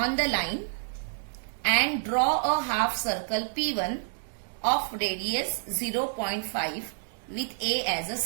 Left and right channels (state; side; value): silent; left; 59 dB below the other